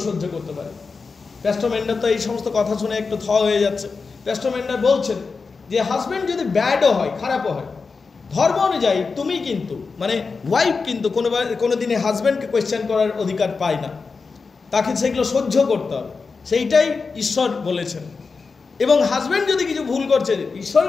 সহ্য করতে পারি? পেস্টর ম্যান্ডার তো এই সমস্ত কথা শুনে একটু হয়ে যাচ্ছে। পেস্টর ম্যান্ডার বলছেন যে হাজব্যান্ড যদি ব্যাডও হয়, খারাপও হয়, ধর্ম অনুযায়ী তুমি কিন্তু মানে ওয়াইফ কিন্তু কোনো দিনে হাজব্যান্ডকে কোয়েশ্চেন করার অধিকার পায় না, তাকে সেগুলো সহ্য করতে হবে, সেইটাই ঈশ্বর বলেছেন। এবং হাজব্যান্ড যদি কিছু ভুল করছে,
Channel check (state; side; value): quieter; right; 4.6 dB